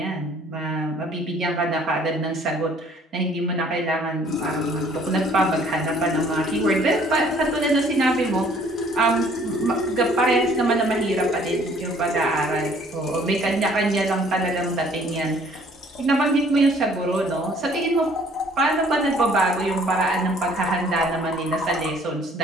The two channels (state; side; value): normal; both; correlation 0.58